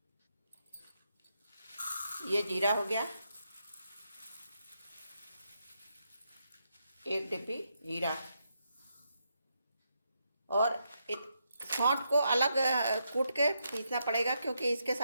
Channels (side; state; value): both; inverted; correlation -0.81